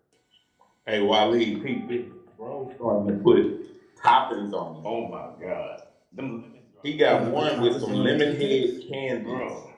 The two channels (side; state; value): both; identical; correlation 1.00